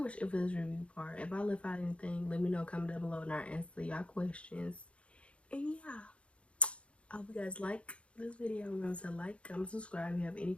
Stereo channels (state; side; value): late; right; 0.060 ms